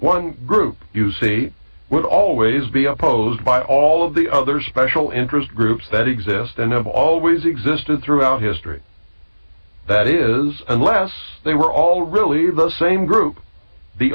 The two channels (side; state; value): both; inverted; correlation -1.00